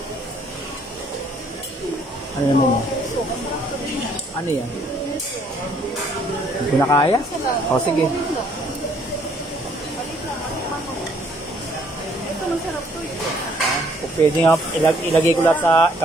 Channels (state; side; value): normal; both; correlation 0.64